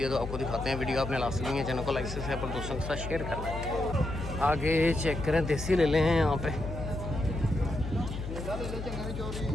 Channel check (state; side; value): noise; left; hum, 7 dB below the sound